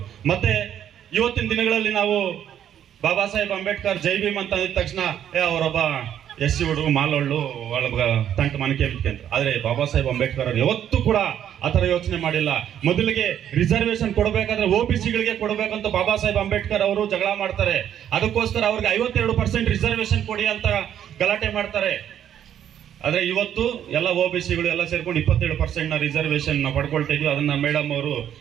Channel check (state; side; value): quieter; left; 10.0 dB